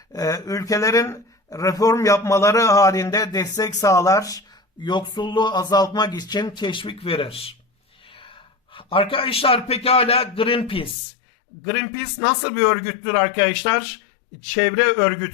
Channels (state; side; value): drops out; right; at 11.0 s